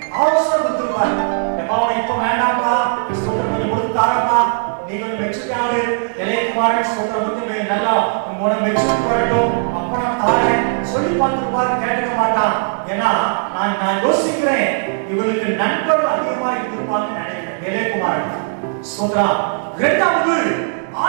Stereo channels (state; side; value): silent; left; digital silence